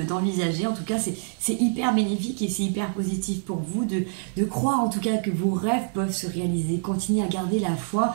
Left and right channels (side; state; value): left; silent; 61 dB below the other